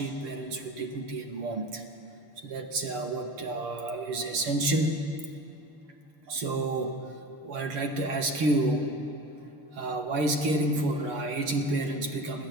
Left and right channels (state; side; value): late; left; 6.8 ms